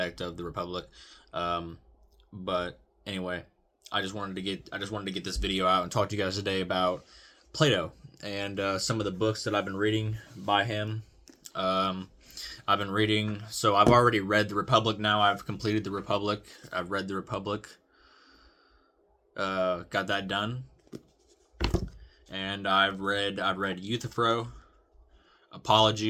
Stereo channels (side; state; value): both; identical; correlation 1.00